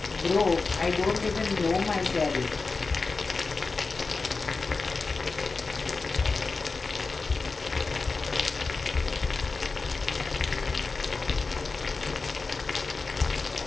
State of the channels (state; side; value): quieter; right; 4.1 dB